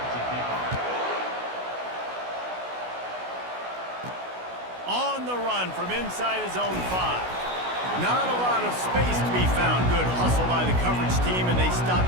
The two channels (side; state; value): left; late; 16 ms